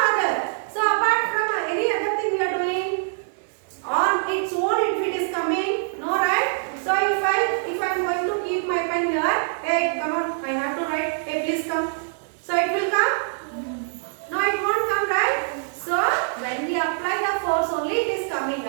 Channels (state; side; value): silent; left; digital silence